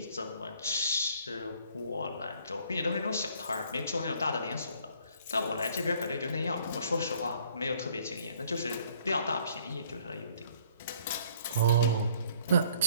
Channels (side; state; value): both; inverted; correlation -0.60